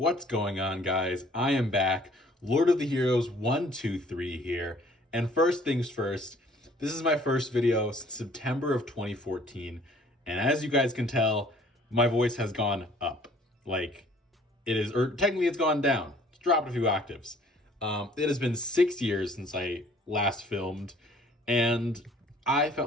going on, guys? I am back. Lord of the Heroes 123 here. And first things first, this is my first video since September of 2014. And as you guys can tell, my voice has gone up. Like, it is, or technically it's gone down. It's dropped a few octaves. It has been 6 years since I last filmed, and I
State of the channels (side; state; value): both; normal; correlation 0.56